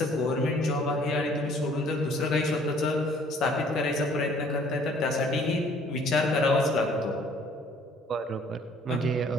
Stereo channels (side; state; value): both; normal; correlation 0.57